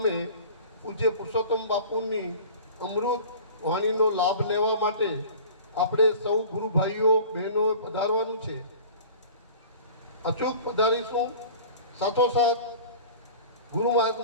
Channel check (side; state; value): both; inverted; correlation -0.41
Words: પૂજ્ય પુરુષોત્તમ બાપુની અમૃત વાણીનો લાભ લેવા માટે આપણે સૌ ગુરુ ભાઈઓ બહેનો પધારવાનું છે. અચૂક પધારીશું. સાથોસાથ ગુરુ